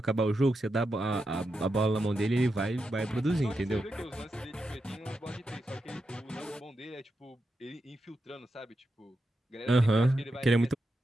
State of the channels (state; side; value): normal; both; correlation 0.87